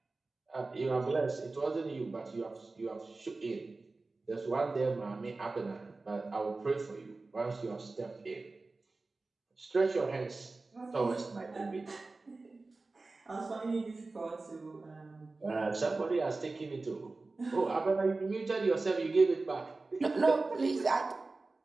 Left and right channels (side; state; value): left; quieter; 3.5 dB